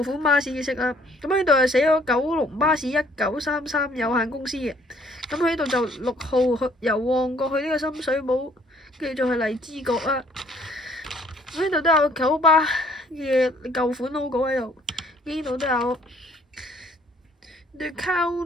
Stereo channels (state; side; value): normal; both; correlation 0.61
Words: 款巴士嘅色啦。咁呢度係寫咗九龍巴士1933有限公司嘅。咁佢呢度就6號由旺角去呢個深水埗，跟住再去荔枝角啦。咁呢度都有九巴嘅舊款 logo 喺度，呢度都有 The